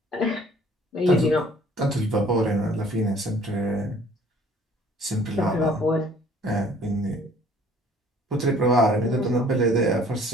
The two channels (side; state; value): both; normal; correlation 0.55